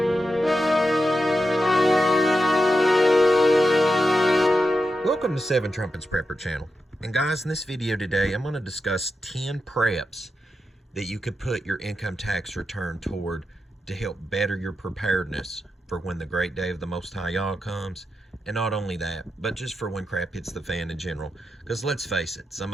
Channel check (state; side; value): normal; both; correlation 0.88